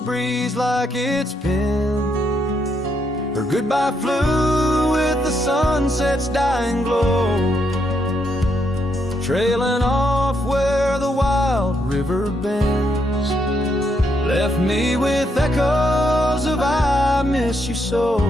like it's been. Her goodbye flew with the sunset's dying glow, trailing off where the wild river bends. Left me with echoes of I miss you so,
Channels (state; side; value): normal; both; correlation 0.77